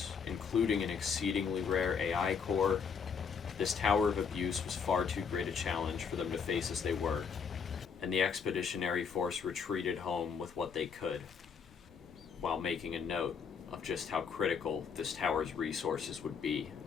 including an exceedingly rare AI core, This tower of abuse was far too great a challenge for them to face as they were. and the expeditionary force retreated home with what they could, while making a note of just how critical this tower's resources would be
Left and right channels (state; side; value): quieter; right; 6.2 dB